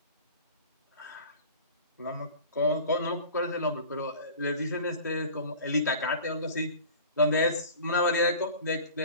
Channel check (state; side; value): inverted; both; correlation -0.41